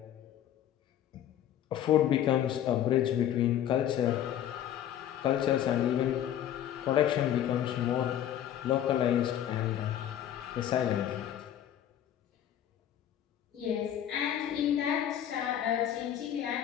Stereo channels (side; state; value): right; quieter; 10.8 dB